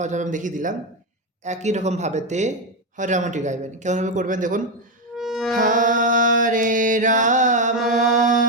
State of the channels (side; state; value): both; normal; correlation 0.08